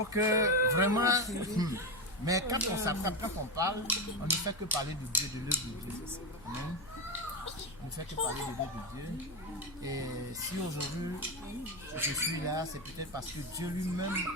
que vraiment. Mais quand on s'attrape, quand on parle, on ne fait que parler de Dieu, de l'œuvre de Dieu. Amen. On ne fait que parler de l'œuvre de Dieu. Et si aujourd'hui je suis là, c'est peut-être parce que Dieu lui-même,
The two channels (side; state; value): left; noise; hum, 20 dB below the sound